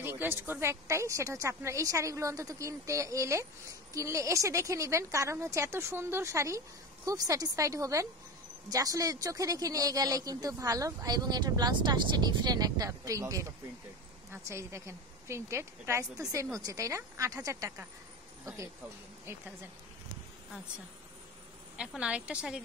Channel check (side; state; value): both; normal; correlation 0.24